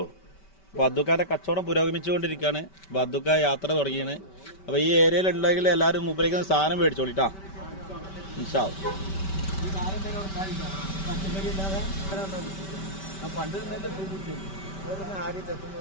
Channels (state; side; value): late; right; 5.2 ms